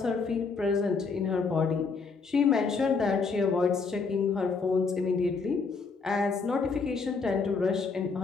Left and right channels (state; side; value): quieter; right; 4.7 dB